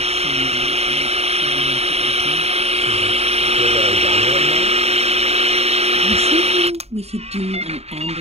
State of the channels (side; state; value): left; late; 0.30 ms